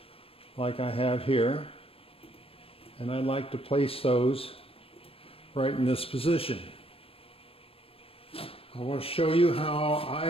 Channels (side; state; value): right; late; 0.28 ms